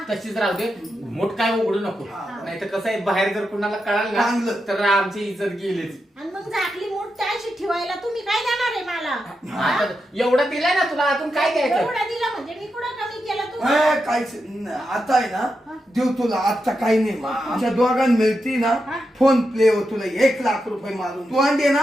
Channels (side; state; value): both; normal; correlation 0.87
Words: तशीच राहू दे. मूठ काय उघडू नको. नाही तर कसं आहे बाहेर जर कुणाला कळालं ना चांगलं. तर आमची इज्जत गेलीच. आणि मग झाकली मूठ त्याशी ठेवायला तुम्ही काय देणार आहे मला? आता एवढं दिलंय ना तुला, अजून काय द्यायचं? एवढं दिलं म्हणजे मी कुठं कमी केलं तुम्हाला? काहीच आता आहे ना देऊ तुला. आता काही नाही आमच्या दोघांना मिळती ना फोन पे वर तुला 1 लाख रुपये मारून तू आणले